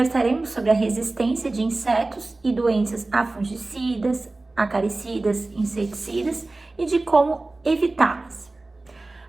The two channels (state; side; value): quieter; left; 3.1 dB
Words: sobre a resistência de insetos e doenças a fungicidas, acaricidas, inseticidas e de como evitá-las.